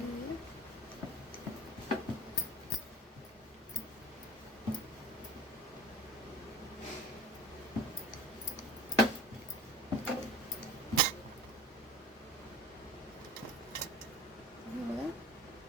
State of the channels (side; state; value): both; normal; correlation 0.40